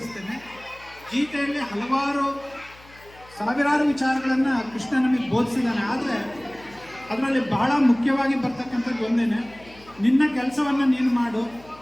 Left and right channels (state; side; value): noise; left; hum, 24 dB below the sound